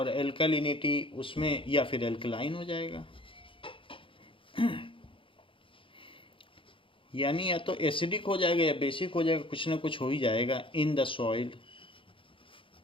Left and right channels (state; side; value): late; right; 0.25 ms